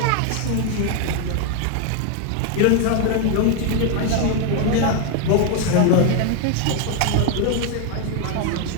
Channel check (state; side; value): different; both; correlation 0.01